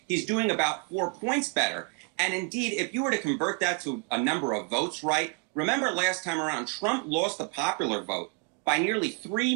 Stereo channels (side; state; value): left; quieter; 32.1 dB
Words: He's doing about 4 points better. And indeed, if you were to convert that to a number of votes, right, remember last time around, Trump lost the popular vote by nearly